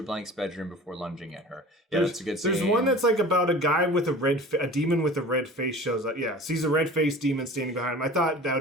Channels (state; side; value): normal; both; correlation 0.40